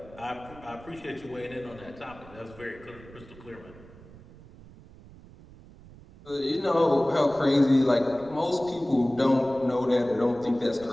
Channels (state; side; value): noise; right; rumble, 20 dB below the sound